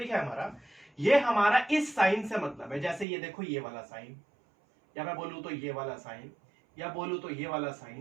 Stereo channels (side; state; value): left; drops out; at 3.1 s